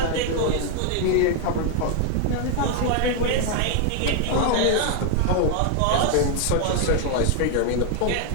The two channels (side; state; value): both; different; correlation 0.00